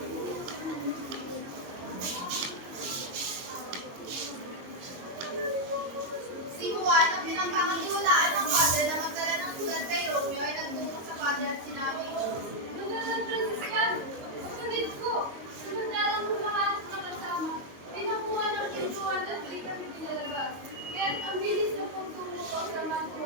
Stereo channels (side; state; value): left; late; 22 ms